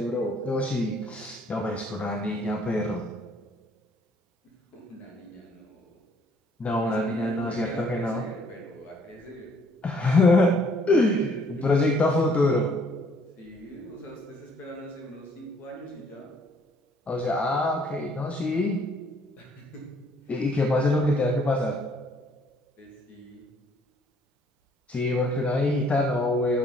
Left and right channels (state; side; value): normal; both; correlation 0.63